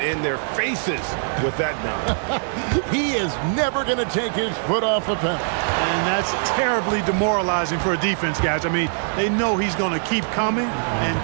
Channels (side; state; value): left; silent; 64 dB below the other